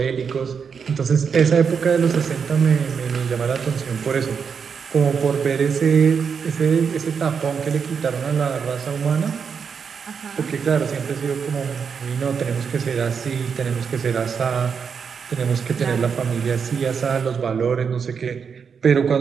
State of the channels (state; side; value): quieter; left; 6.3 dB